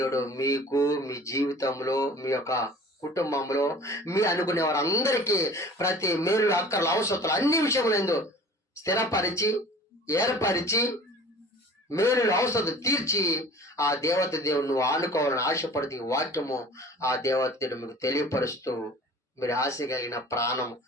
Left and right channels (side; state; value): both; normal; correlation 0.44